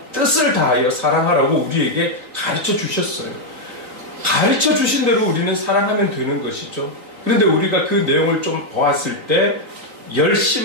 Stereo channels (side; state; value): left; late; 3.9 ms